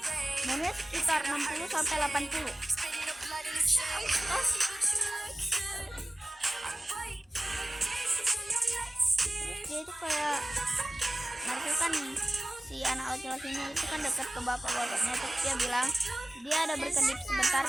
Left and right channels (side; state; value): both; normal; correlation 0.97